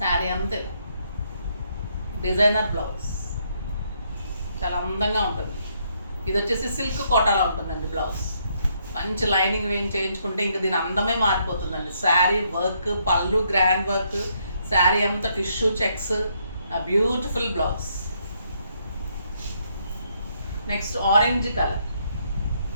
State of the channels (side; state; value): both; inverted; correlation -0.73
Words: అంతే డిజైనర్ బ్లౌజ్, చాలా అందంగా ఉంటుంది. ఇది వచ్చేసి సిల్క్ కోటాలో ఉంటుందండి బ్లౌజ్. మంచి లైనింగ్ వేయం చేయించుకుంటే ఇంకా దీని అందమే మారిపోతుందండి. శారీ వర్క్, పళ్ళు గ్రాండ్ వర్క్, శారీ అంతా tissue checks, beautiful blouse. Next orange colour.